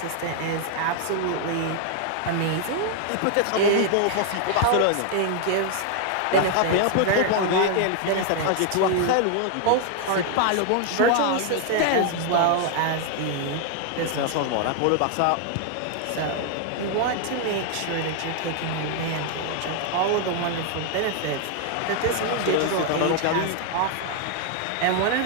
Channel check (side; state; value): both; different; correlation 0.00